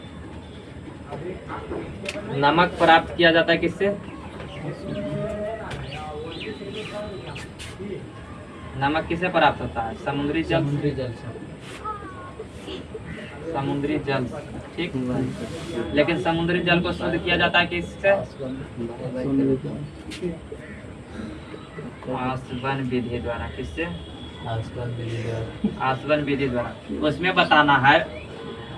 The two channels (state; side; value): identical; both; correlation 1.00